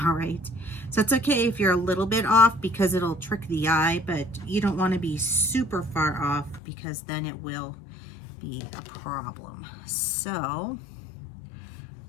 all right? So it's okay if you're a little bit off, because it'll trick the eye, but you don't want to be super far off, because then it will be a problem. So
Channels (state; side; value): drops out; right; at 6.6 s